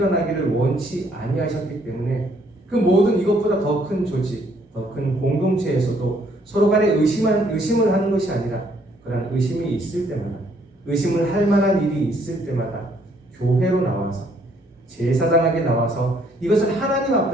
원치 아니하셨기 때문에 그 모든 이것보다 더 큰 조직, 더 큰 공동체에서도 서로 간에 의심을 하는 것이 아니라 그런 의심이 있을 때마다, 의심을 할 만한 일이 있을 때마다 교회로 나와서, 제사장에게 나와서 이것을 하나님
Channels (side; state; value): both; normal; correlation 0.66